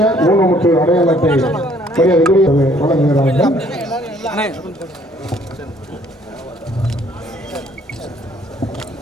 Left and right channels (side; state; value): both; normal; correlation 0.61